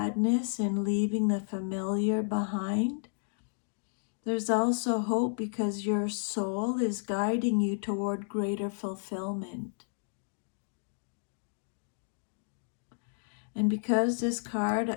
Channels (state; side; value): silent; right; digital silence